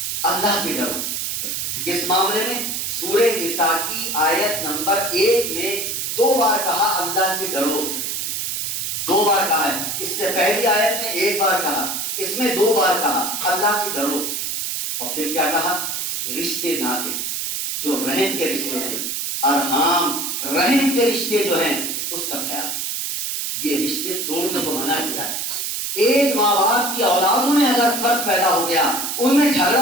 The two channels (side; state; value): right; noise; hiss, 2 dB below the sound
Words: اللہ سے ڈرو۔ کس معاملے میں؟ سورہ نساء کی آیت نمبر 1 میں 2 بار کہا اللہ سے ڈرو، 2 بار کہا ہے۔ اس سے پہلی آیت میں 1 بار کہا، اس میں 2 بار کہا اللہ سے ڈرو۔ اور پھر کیا کہا؟ رشتے ناطے جو رحم کے رشتے ہیں، ارحام رحم کے رشتے جو ہیں اس کا خیال، یہ رشتے توڑنے کو منع کیا ہے۔ ایک ماں باپ کی اولادوں میں اگر فرق پیدا ہو گیا، ان میں